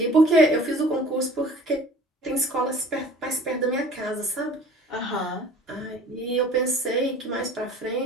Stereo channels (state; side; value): normal; both; correlation 0.47